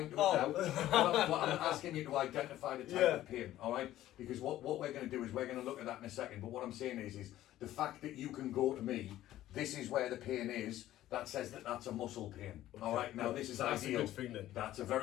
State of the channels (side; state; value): right; quieter; 13.9 dB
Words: to it now. But I'm asking you to identify the type of pain, all right? Because what we're going to do is we're going to look at that in a second. But what I'm saying is the fact that you can go to me, this is where the pain is. That says that that's a muscle pain. Okay. All right. Now this is that's ideal. That's a good thing then. That's a